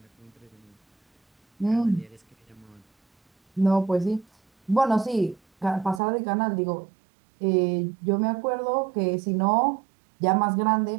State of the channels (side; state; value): left; drops out; at 6.0 s